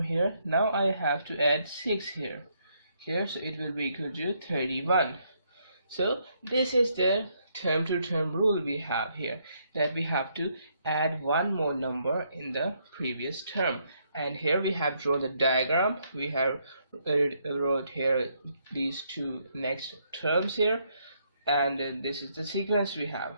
here, now I have to add 6 here, so it will be equal to 31. So this is the term to term rule we have here, that we have to add one more number in the previous term. And here we have drawn the diagram. We have wrote here these two next terms here, and this is the sequence we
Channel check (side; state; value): both; inverted; correlation -0.73